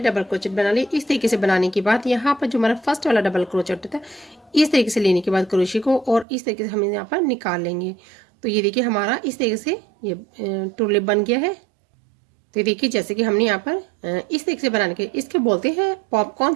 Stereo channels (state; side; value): drops out; left; at 6.2 s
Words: डबल क्रोचेट बना ली। इस तरीके से बनाने के बाद यहाँ पर जो हमारा फर्स्ट वाला डबल क्रोचेट होता है इस तरीके से लेने के बाद क्रोशे को और इस तरीके से हम यहाँ पर निकाल लेंगे। तो ये देखिए हमारा इस तरीके से ये टुलिप बन गया है। तो देखिए जैसे कि हमने यहाँ पर इस तरीके से बनाने के इसके बोलते हैं पॉपकॉर्न